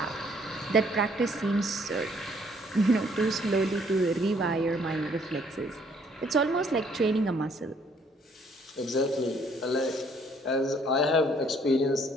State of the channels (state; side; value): normal; both; correlation 0.64